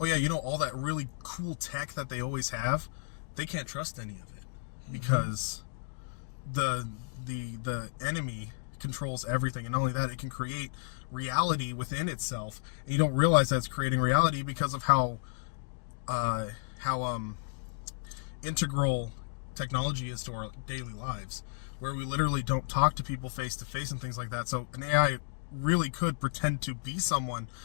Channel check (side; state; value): right; silent; digital silence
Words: yeah, all that really cool tech that they always have, they can't trust any of it because the enemy controls everything. And not only that, it can create reality within itself, and you don't realize that it's creating reality because of how integral technology is to our daily lives, where we literally don't talk to people face to face and things like that. So an AI really could pretend to be someone